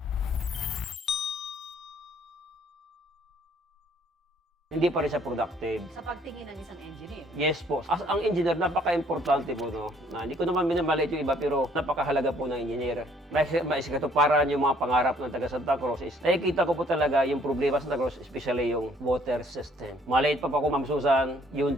Hindi pa rin siya productive. Sa pagtingin ng isang engineer. Yes po. As ang engineer, napaka-importante po, no? Na, hindi ko naman minamalit yung iba, pero napakahalaga po ng engineer. Maisikatuparan yung mga pangarap ng taga Santa Cruz is, nakikita ko po talaga yung problema sa Santa Cruz, especially yung water system. Maliit pa po ako, Ma'am Susan,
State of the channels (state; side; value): normal; both; correlation 0.62